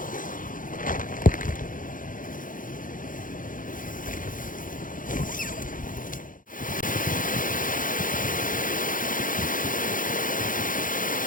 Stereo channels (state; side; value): late; right; 0.39 ms